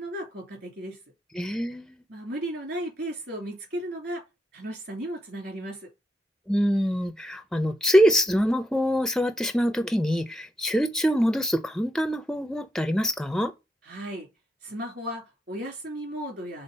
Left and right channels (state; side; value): normal; both; correlation 0.81